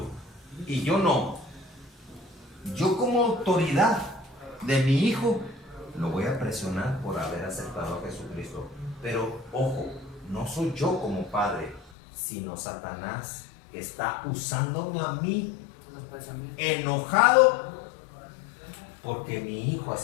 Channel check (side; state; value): right; drops out; at 11.9 s